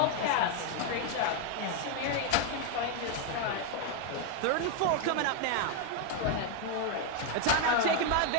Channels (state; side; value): different; both; correlation 0.01